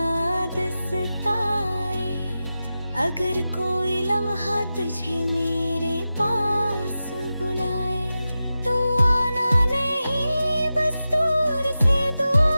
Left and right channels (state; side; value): inverted; both; correlation -0.93